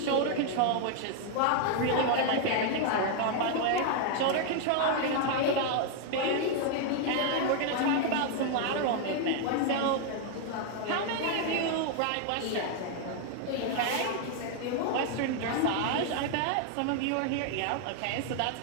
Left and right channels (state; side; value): different; both; correlation 0.00